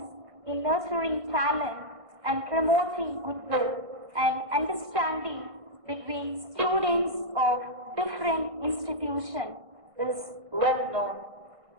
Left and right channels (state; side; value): late; left; 1.6 ms